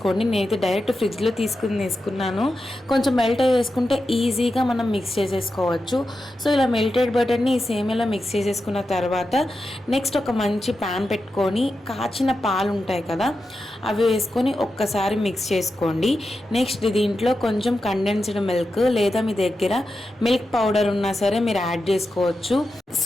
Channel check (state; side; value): normal; both; correlation 0.90